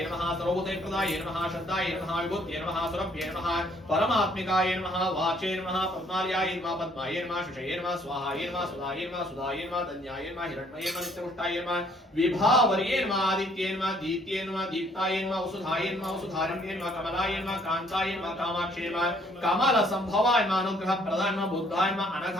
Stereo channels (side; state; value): both; normal; correlation 0.63